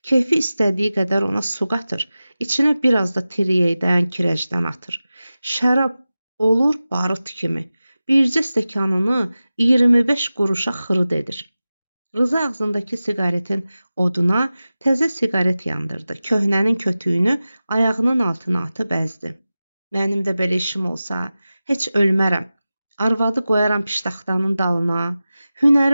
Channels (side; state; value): both; inverted; correlation -0.95